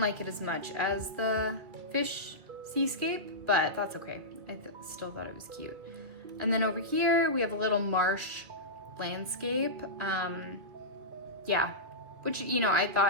like it as much as the fish seascape, but that's okay. I still thought it was cute. And then over here, we have a little marsh landscape. Yeah, which, you know, I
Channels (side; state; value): left; late; 2.1 ms